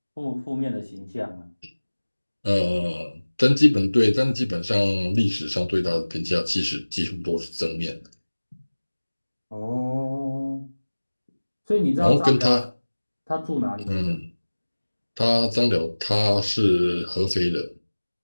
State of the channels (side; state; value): both; inverted; correlation -1.00